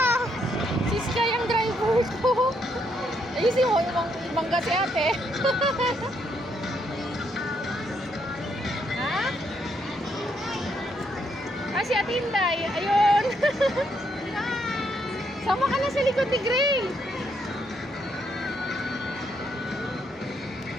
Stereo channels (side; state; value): both; normal; correlation 0.75